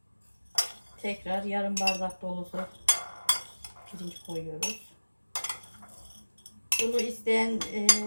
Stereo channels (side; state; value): both; inverted; correlation -1.00